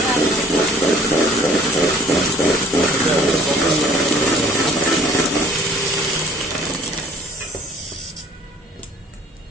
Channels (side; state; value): both; normal; correlation 0.54